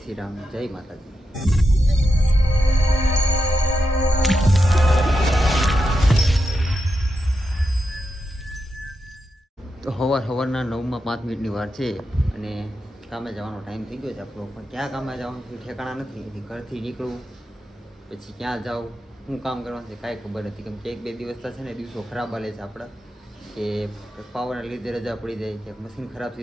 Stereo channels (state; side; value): normal; both; correlation 0.87